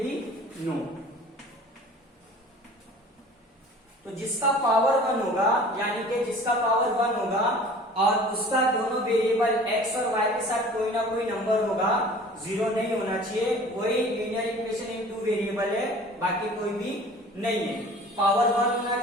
भी नो। तो जिसका पावर 1 होगा, यानी कि जिसका पावर 1 होगा और उसका दोनों वेरिएबल x और y के साथ कोई ना कोई नंबर होगा, 0 नहीं होना चाहिए, वही लीनियर इक्वेशन इन 2 वेरिएबल है, बाकी कोई भी नहीं है। पावर 1 होना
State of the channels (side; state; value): both; normal; correlation 0.45